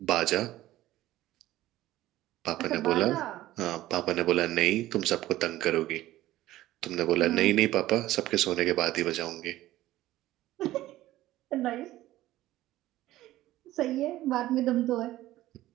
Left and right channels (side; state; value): left; quieter; 15.4 dB